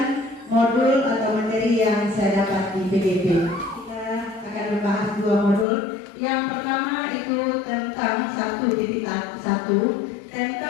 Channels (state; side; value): drops out; right; at 5.7 s